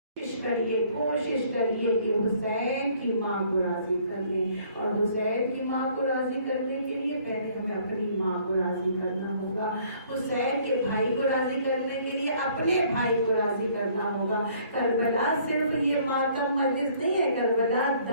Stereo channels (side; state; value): both; inverted; correlation -0.59